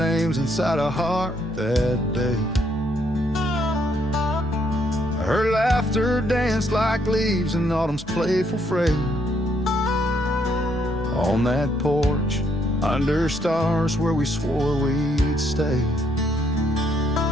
inside a heart that day. Her laughter danced like leaves in autumn's playful fray. On that porch, under stars where we swore we'd stay.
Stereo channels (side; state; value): both; normal; correlation 0.71